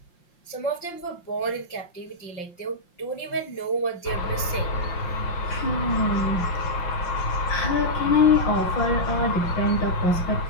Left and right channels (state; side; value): late; right; 5.7 ms